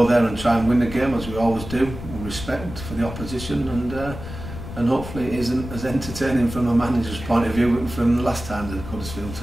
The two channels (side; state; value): left; noise; rumble, 10 dB below the sound